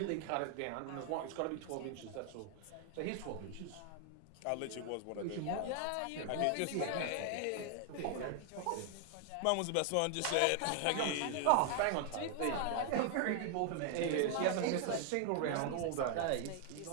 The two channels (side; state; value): both; different; correlation 0.01